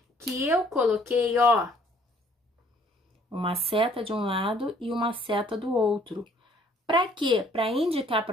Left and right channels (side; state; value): both; normal; correlation 0.60